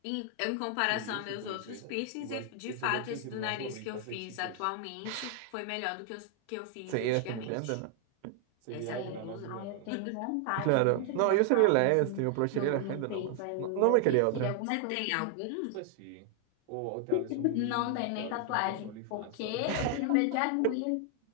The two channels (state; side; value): different; both; correlation 0.00